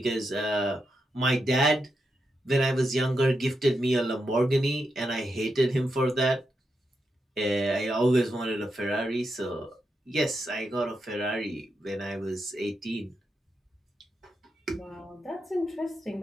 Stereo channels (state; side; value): normal; both; correlation 0.85